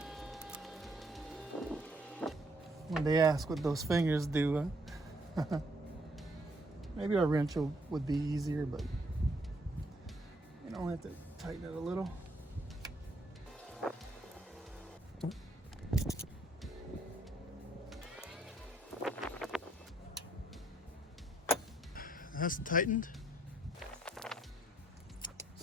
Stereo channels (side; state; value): both; normal; correlation 0.69